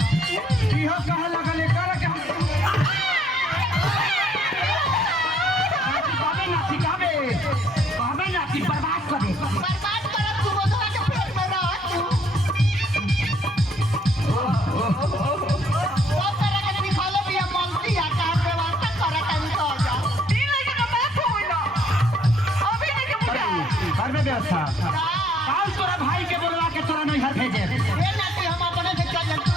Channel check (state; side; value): normal; both; correlation 0.65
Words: इहो कहे लगल एकर के बाबे ना सिखावे बाबे ना कि बर्बाद कर तू बधवा के पेट में रह तू ओ तरह के सिखाले भी मलती आ का व्यवस्था करे तनी तो जा तीन लगे का मैं फोन ना अभी नहीं के बुझा घर में व्यवस्था काल तोरा भाई के बोलवा के तोरा नहीं घर भेजे ए ना कि हम अपने से चल तू